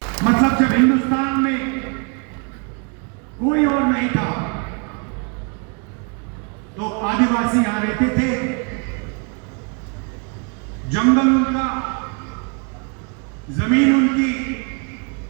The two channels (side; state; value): left; quieter; 36.2 dB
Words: मतलब जब हिंदुस्तान में कोई और नहीं था तो आदिवासी यहां रहते थे, जंगल उनका, जमीन उनकी,